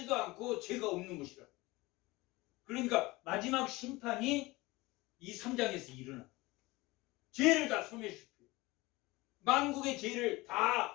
않고 죄가 없는 것이라. 그러니까 마지막 심판이 이 3장에서 일어나. 죄를 다 소멸시켜. 만국의 죄를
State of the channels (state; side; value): quieter; right; 21.4 dB